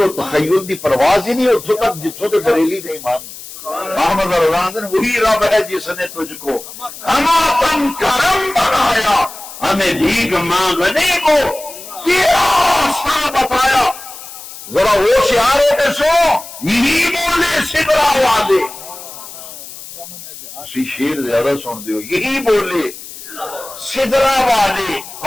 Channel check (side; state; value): left; noise; hiss, 14 dB below the sound